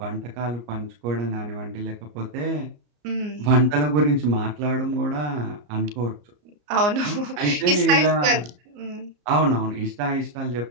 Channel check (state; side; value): late; left; 34 ms